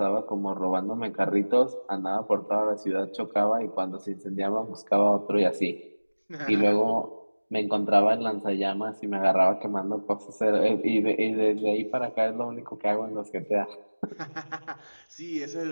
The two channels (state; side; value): inverted; both; correlation -1.00